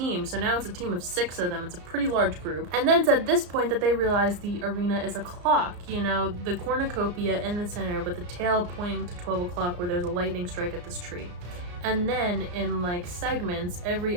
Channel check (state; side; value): late; left; 34 ms